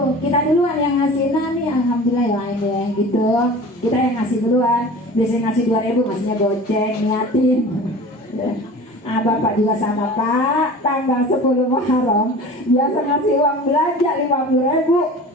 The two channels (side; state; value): both; normal; correlation 0.39